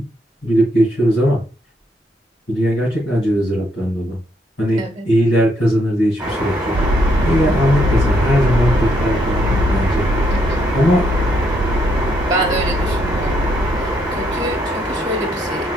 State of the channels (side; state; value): both; normal; correlation 0.74